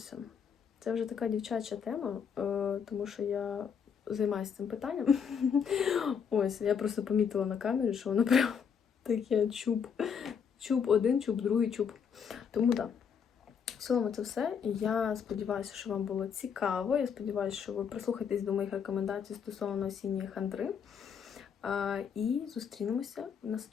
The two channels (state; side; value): quieter; right; 7.0 dB